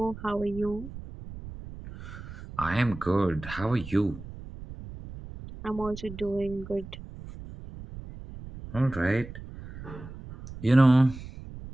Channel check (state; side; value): noise; right; rumble, 13 dB below the sound